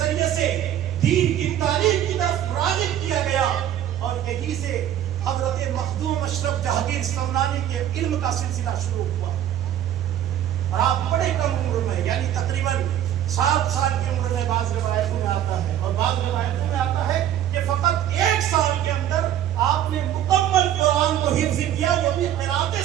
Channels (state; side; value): quieter; left; 11.3 dB